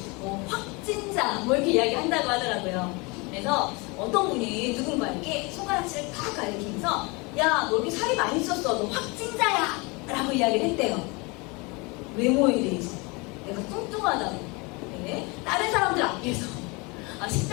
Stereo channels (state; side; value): quieter; right; 27.5 dB